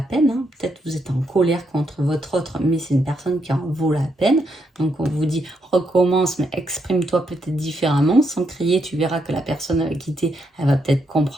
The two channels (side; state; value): both; normal; correlation 0.78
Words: hein. Peut-être vous êtes en colère contre votre autre, mais c'est une personne qui en vaut la peine. Donc on vous dit recommence, mais exprime-toi peut-être différemment, sans crier. Tu verras que la personne avec qui t'es, elle va peut-être